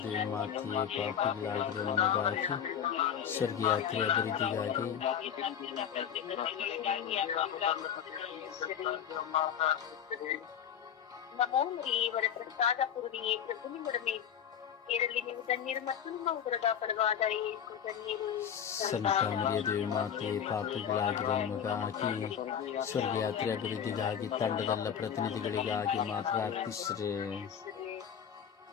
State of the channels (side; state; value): right; quieter; 8.6 dB